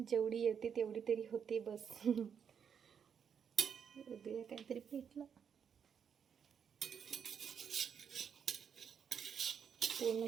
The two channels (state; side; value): quieter; left; 7.4 dB